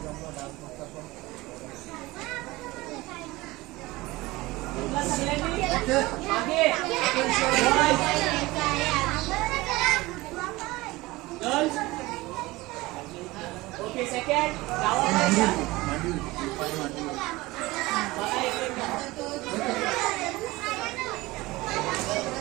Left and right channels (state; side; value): quieter; left; 20.5 dB